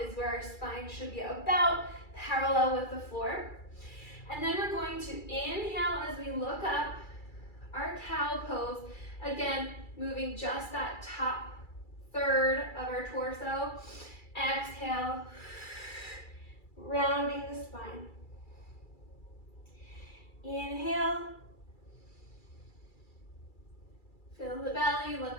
is where our spine should be about parallel with the floor. And then we're going to inhale as we look up, our cow pose. Again, moving just that top third of our torso. Exhale, rounding the spine. Inhale, fill the belly,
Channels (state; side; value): late; right; 2.3 ms